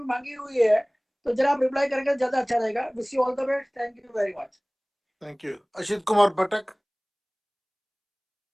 मांगी हुई है, तो जरा आप रिप्लाई करके ज्यादा अच्छा रहेगा। Wish you all the best. Thank you very much. Thank you. Ashit Kumar Patak.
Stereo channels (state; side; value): identical; both; correlation 1.00